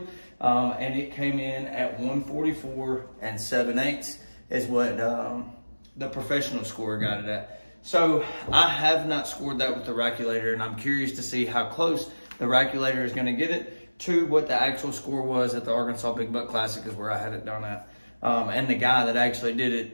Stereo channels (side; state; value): both; inverted; correlation -1.00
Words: And it came in at 144 7/8 is what the professional scorer got it at. So I have not scored that with the Rackulator, and I'm curious to see how close the Rackulator is gonna get it to what the actual score was at the Arkansas Big Buck Classic, is where I had it done at. And the guy that actually did